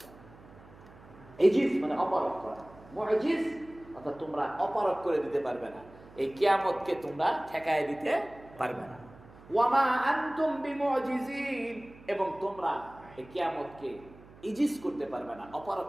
না। ইজিজ মানে অপারগ করা, মুজিজ অর্থাৎ তোমরা অপারগ করে দিতে পারবে না, এই কিয়ামতকে তোমরা ঠেকায় দিতে পারবে না। ওয়া মা আনতুম বিমুজিজিন, এবং তোমরা এই কিয়ামতকে ইজিজ করতে পারবে না, অপারগ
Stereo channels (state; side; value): noise; right; hum, 22 dB below the sound